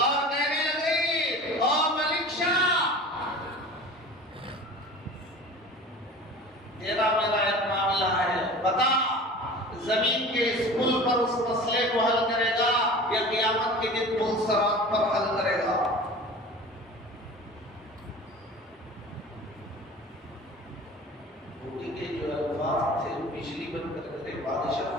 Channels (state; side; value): normal; both; correlation 0.39